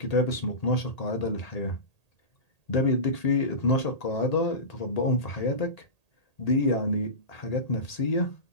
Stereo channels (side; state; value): right; late; 1.8 ms